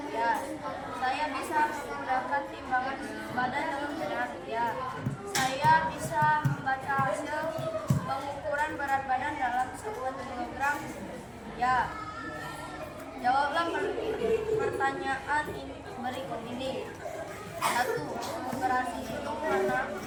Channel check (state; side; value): identical; both; correlation 1.00